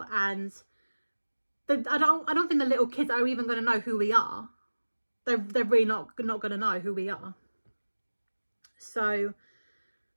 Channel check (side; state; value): both; inverted; correlation -1.00